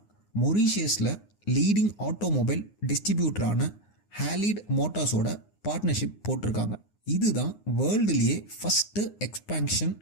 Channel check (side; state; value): right; late; 9.6 ms